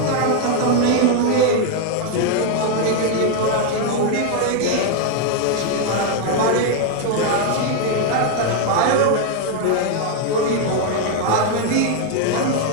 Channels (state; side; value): different; both; correlation 0.01